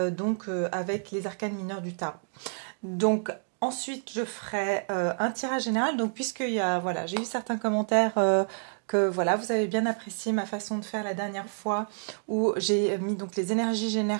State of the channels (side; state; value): left; silent; digital silence